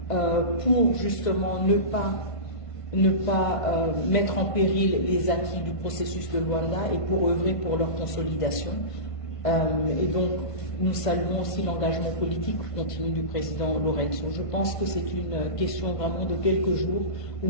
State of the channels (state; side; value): late; right; 1.5 ms